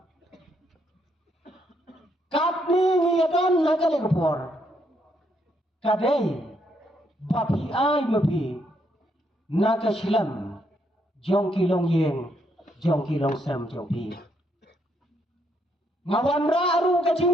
katni ngiyadon na kali kapor kadey bapi ay mapi na kasilam jong kilong yeng jong kilong sam jong pi ngawan aru ka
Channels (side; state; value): both; normal; correlation 0.74